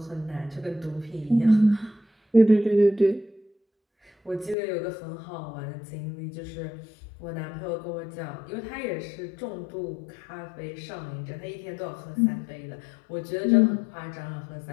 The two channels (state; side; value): drops out; right; at 4.5 s